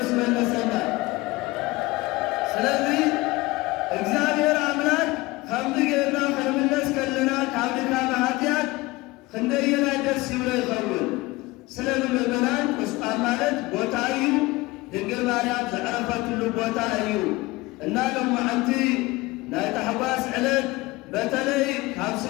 መለሰና ስለዚ እግዚአብሔር አምላክ ከምዚ ጌርና ክንምለስ ከለና ካብ ድካም ኃጢአት ክንደየና ደስ ይብሎ ይኸውን ስለዚ ምእመናን ቁስቋም ማለት ቦታ እዩ ድንግል ማርያም ዘዕረፈትሉ ቦታ እዩ እና ሎማዓንቲ ናይ ታሕጓስ ዕለት በተለይ ካብ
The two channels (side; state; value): right; quieter; 21.3 dB